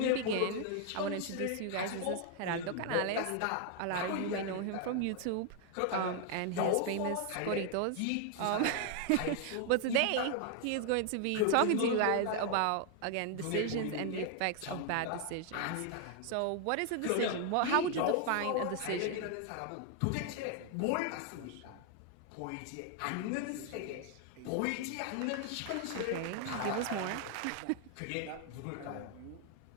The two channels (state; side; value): different; both; correlation 0.00